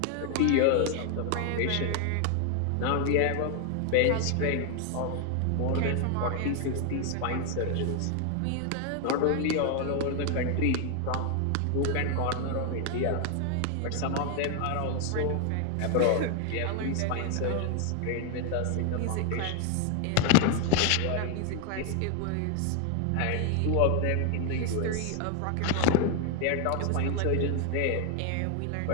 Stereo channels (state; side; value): different; both; correlation 0.01